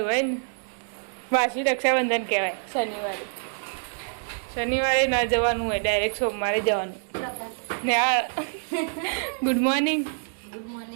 હોય ને વાસી રક્ષાબંધન કહેવાય. શનિવારે ના જવાનું હોય, ડાયરેક્ટ સોમવારે જવાનું. ને આ ગુડ મોર્નિંગ. ગુડ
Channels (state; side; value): silent; left; digital silence